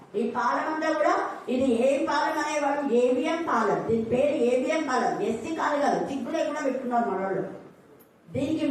ఈ పాలెం అంతా కూడా ఇది ఏ పాలెం అనేవాడు? ఏబిఎం పాలెం. దీని పేరు ఏబిఎం పాలెం. ఎస్సీ కాదు కాదు, చిగ్గు లేకుండా పెట్టుకున్నారు మనోళ్ళు. దీనికి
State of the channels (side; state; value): both; identical; correlation 1.00